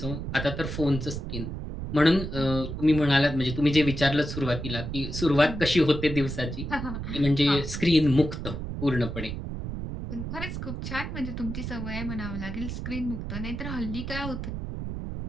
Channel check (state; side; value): noise; right; rumble, 6 dB below the sound